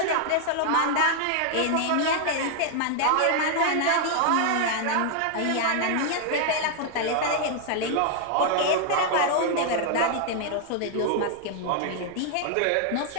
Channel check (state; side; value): different; both; correlation 0.00